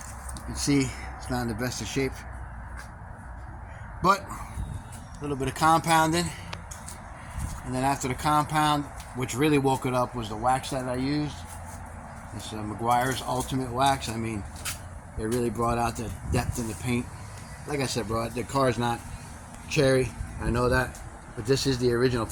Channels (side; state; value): both; identical; correlation 1.00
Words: can see it's not in the best of shape, but a little bit of compounding, and then after the compound, which really woke it up, was the wax that I used. It's Meguiar's Ultimate Wax. I mean, it really brought out the depth in the paint. Like I said, bro, the car's not cherry, I know that, but this is the original